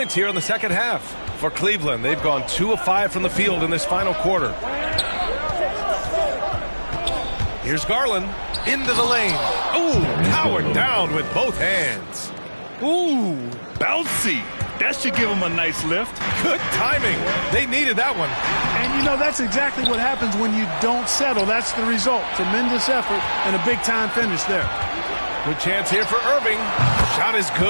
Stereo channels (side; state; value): both; inverted; correlation -1.00